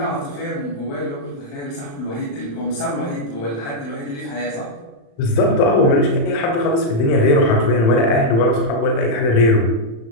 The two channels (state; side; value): late; right; 35 ms